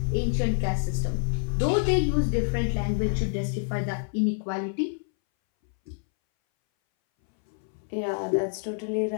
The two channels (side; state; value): right; silent; 60 dB below the other